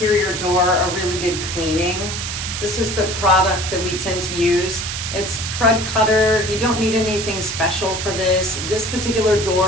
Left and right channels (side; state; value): right; noise; hiss, 5 dB below the sound